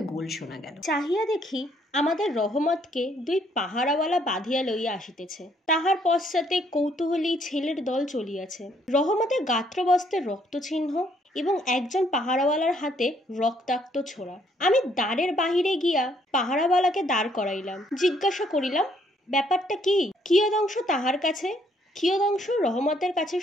গোল শোনা গেল। চাহিয়া দেখি আমাদের রহমতকে 2 পাহারাওয়ালা বাঁধিয়া লইয়া আসিতেছে। তাহার পশ্চাতে কৌতূহলী ছেলের দল চলিয়াছে। রহমতের গাত্রবস্ত্রে রক্তচিহ্ন এবং একজন পাহারাওয়ালার হাতে রক্তাক্ত ছোড়া। আমি দ্বারের বাহিরে গিয়া পাহারাওয়ালাকে দাঁড় করাইলাম। জিজ্ঞাসা করিলাম, ব্যাপারটা কি? কিয়দংশ তাহার কাছে, কিয়দংশ রহমতের কাছে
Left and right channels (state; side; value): normal; both; correlation 0.68